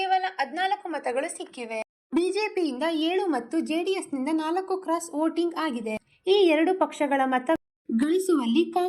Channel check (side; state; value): both; identical; correlation 1.00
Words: 14 ಮತಗಳು ಸಿಕ್ಕಿವೆ. ಬಿಜೆಪಿಯಿಂದ 7 ಮತ್ತು ಜೆಡಿಎಸ್ನಿಂದ 4 ಕ್ರಾಸ್ ವೋಟಿಂಗ್ ಆಗಿದೆ. ಈ ಎರಡು ಪಕ್ಷಗಳ ಮತ ಗಳಿಸುವಲ್ಲಿ